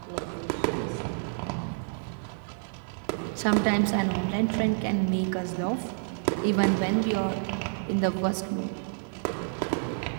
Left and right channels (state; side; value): silent; left; digital silence